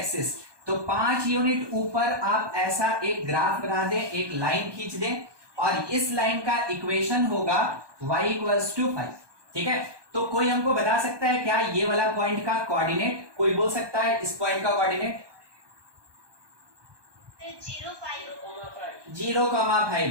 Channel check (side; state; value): left; late; 1.2 ms